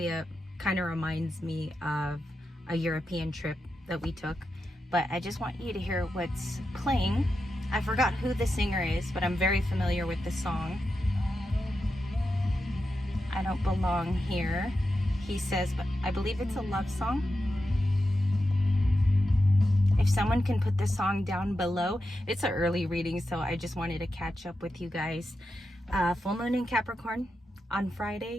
kind of reminds me of a European trip that we took. But I just want you to hear what's playing. I forgot who the singer is, but I'm very familiar with the song. I don't belong here, he says, but I believe it's a love song. If someone can put the song down below. It's an early reading, so I just wanted to catch up with you guys. Full moon in Capricorn on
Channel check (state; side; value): normal; both; correlation 0.89